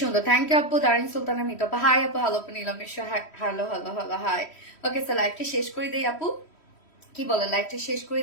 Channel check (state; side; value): late; right; 3.1 ms